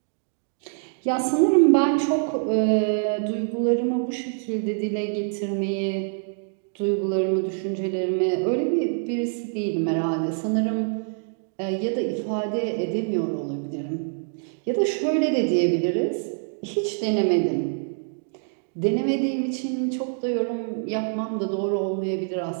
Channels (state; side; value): silent; left; digital silence